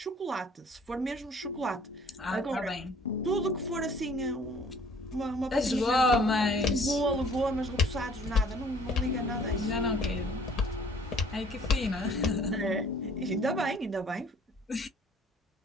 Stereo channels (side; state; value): both; normal; correlation 0.55